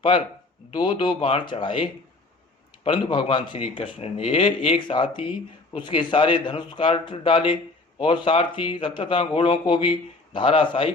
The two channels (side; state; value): right; quieter; 3.2 dB